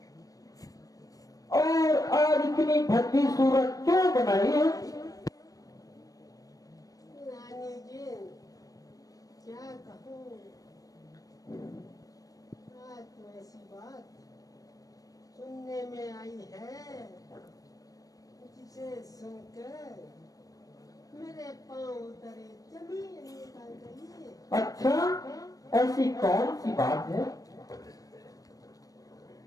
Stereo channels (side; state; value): right; late; 0.17 ms